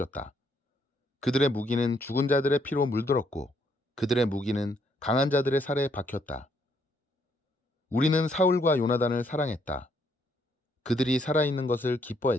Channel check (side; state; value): both; normal; correlation 0.71